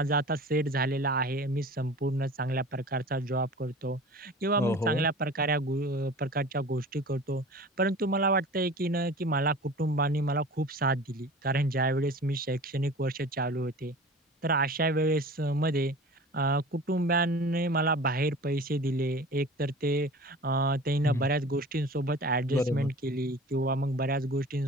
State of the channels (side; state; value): both; normal; correlation 0.39